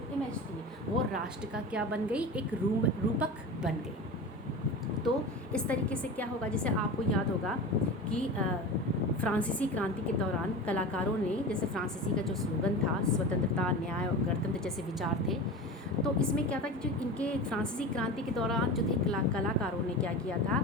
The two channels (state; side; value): normal; both; correlation 0.30